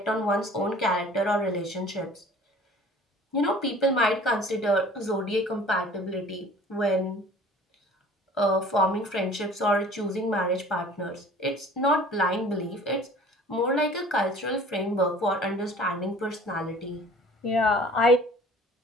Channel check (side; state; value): both; normal; correlation 0.48